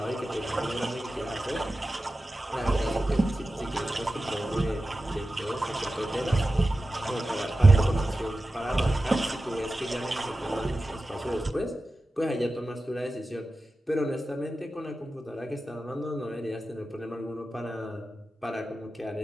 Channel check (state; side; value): normal; both; correlation 0.94